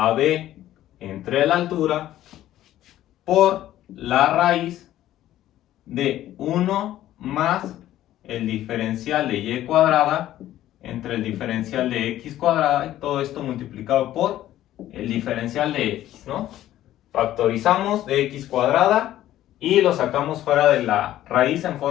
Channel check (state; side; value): quieter; right; 13.4 dB